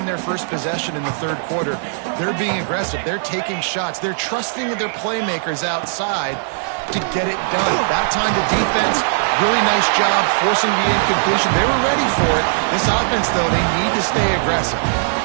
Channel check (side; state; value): left; silent; 67 dB below the other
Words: their first possession in the 3rd quarter. They're being aggressive. They're taking shots. They're trusting their playmakers outside to get it done. That time the defense, really nice job forcing the incompletion. They were ready for it. This offense, though, they need to stay aggressive.